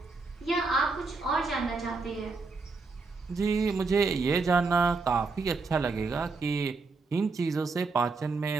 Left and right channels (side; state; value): left; quieter; 4.1 dB